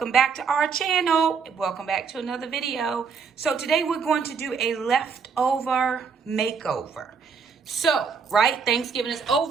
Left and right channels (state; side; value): quieter; left; 5.8 dB